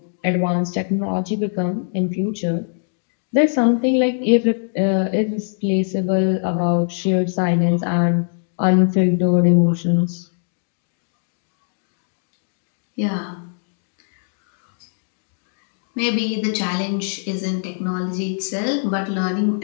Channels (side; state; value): right; silent; digital silence